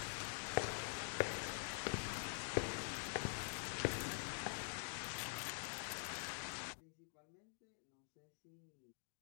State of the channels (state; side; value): silent; right; digital silence